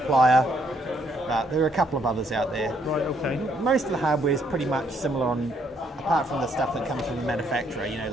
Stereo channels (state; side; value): normal; both; correlation 0.70